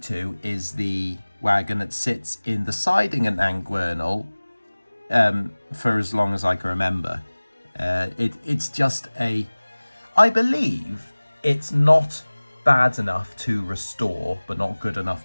is the wagon that sits in the siding at Nant Gwernol for as long as I can remember. It's just I believe it's not bad enough to restore, but not good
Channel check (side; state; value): both; inverted; correlation -1.00